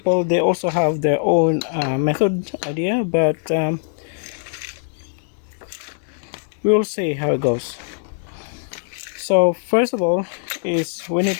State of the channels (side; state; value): right; silent; digital silence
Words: they also have their own method idea, but we'll see how it goes. So first of all is we need